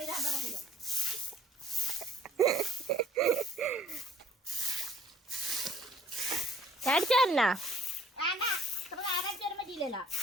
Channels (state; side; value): normal; both; correlation 0.58